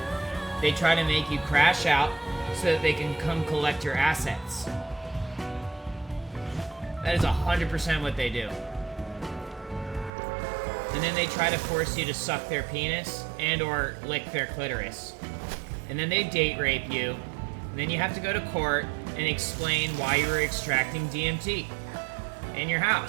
They try to make you crash out so that they can come collect your assets. That is 100% what they do. And then they try to force you to suck their penis and or lick their clitoris. And then they date rape you. And then you have to go to court and explain why you were extracting DMT in your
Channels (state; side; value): drops out; left; at 10.1 s